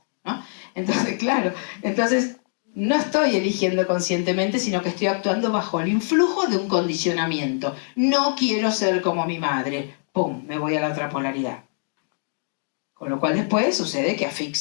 ¿no? Entonces, claro. Entonces, no estoy eligiendo conscientemente, sino que estoy actuando bajo el influjo de un condicionamiento. No quiero ser como mi madre. ¡Pum! Me voy a la otra polaridad. Con lo cual después sucede que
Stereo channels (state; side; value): silent; right; 56 dB below the other